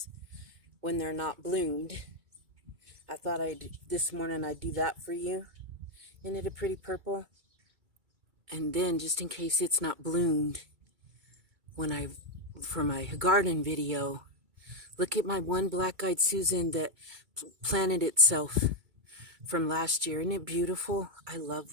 when they're not bloomed, I thought this morning I'd do that for you. Isn't it a pretty purple? And then, just in case it's not bloomed, for my garden video, look at my one black-eyed Susan that planted itself from last year. Isn't it beautiful? I love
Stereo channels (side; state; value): left; late; 2.2 ms